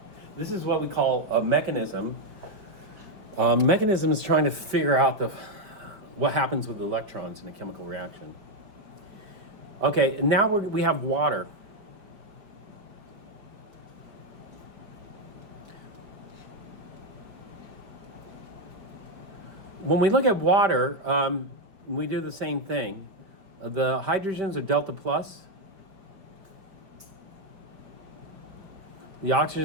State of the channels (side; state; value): left; late; 5.0 ms